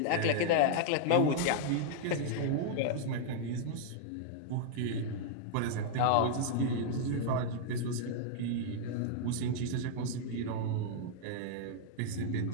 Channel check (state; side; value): different; both; correlation -0.01